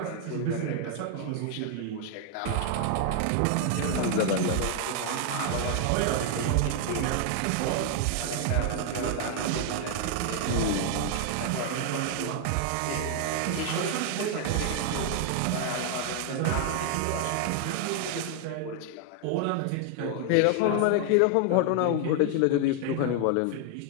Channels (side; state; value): both; different; correlation 0.00